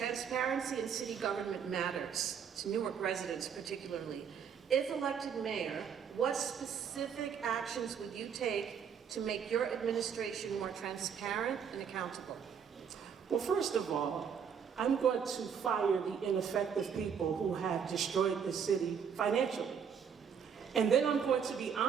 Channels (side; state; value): left; quieter; 7.3 dB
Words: in city government matters, to Newark residents particularly. If elected mayor, what specific actions would you take to make your administration more transparent and accountable? Well, first of all, I'm going to fire the ineffective people who have destroyed the city financially. And then I'm going to be